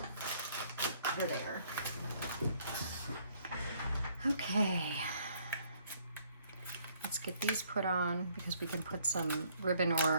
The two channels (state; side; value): inverted; both; correlation -0.64